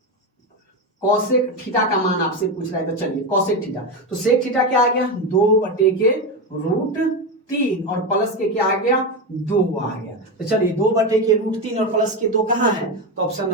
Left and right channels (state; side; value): normal; both; correlation 0.14